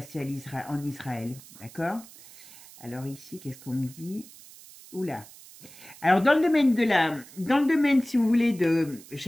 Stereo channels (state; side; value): noise; right; hiss, 20 dB below the sound